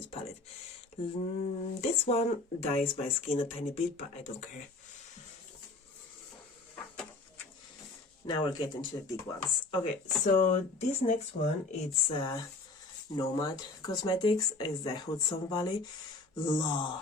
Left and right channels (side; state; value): right; quieter; 3.4 dB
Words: palette. This one dyes my skin a tiny bit, but I don't care. Now we're getting to the big ones. Okay, so this next one, it's Nomad Cosmetics, is the Hudson Valley.